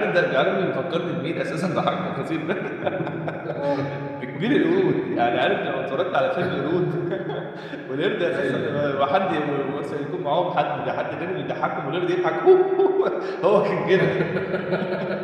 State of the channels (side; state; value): both; identical; correlation 1.00